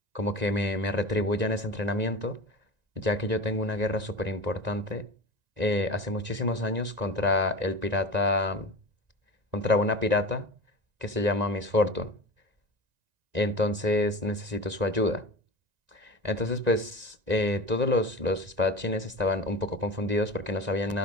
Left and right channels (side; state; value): left; late; 1.9 ms